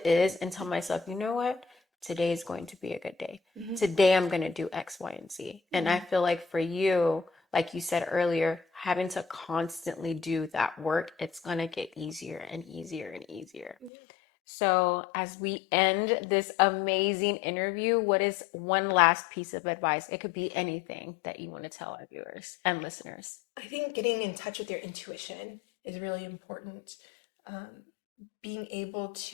is and tell myself, you know what? Today is going to be a good day. Today I'm going to do X, Y, and Z. And I feel like for you, like you said earlier, having to constantly do that work, it's going to get easier and easier and easier. So as we end this amazing interview, what is one last piece of advice? It could be anything that you want to tell our viewers and listeners. I think getting in touch with your intuition is really important. Being able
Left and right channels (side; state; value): right; drops out; at 13.9 s